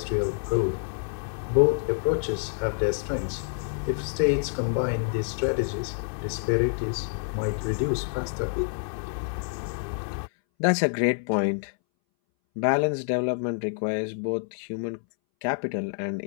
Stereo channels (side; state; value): right; silent; 60 dB below the other